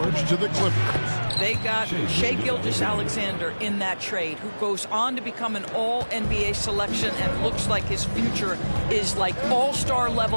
to the Clippers. They got Shai Gilgeous-Alexander in that trade, who goes on to become an all-NBA selection and looks like his future is like all-star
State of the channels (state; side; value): inverted; both; correlation -1.00